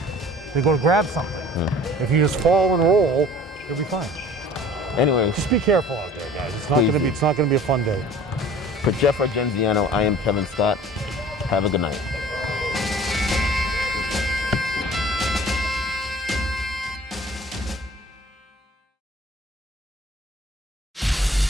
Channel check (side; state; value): both; normal; correlation 0.47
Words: They go to grab something. If you just fall and roll, you'll be fine. Anyway, just be careful out there, guys. It's not gonna be a fun day. For Jeff Argenziano, I am Kevin Scott. Have a good night.